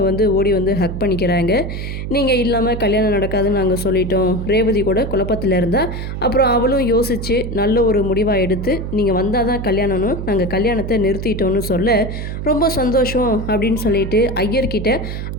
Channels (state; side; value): noise; right; hum, 5 dB below the sound